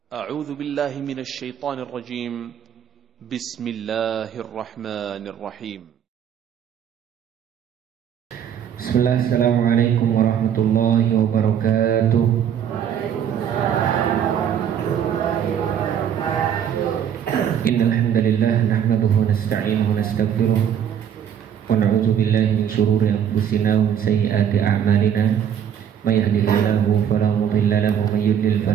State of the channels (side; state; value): left; quieter; 8.9 dB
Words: أعوذ بالله من الشيطان الرجيم. بسم الله الرحمن الرحيم. بسم الله. السلام عليكم ورحمة الله وبركاته. إن الحمد لله نحمده ونستعينه ونستغفره ونعوذ بالله من شرور أنفسنا ومن سيئات أعمالنا. من يهده الله فلا مضل له ومن يضلل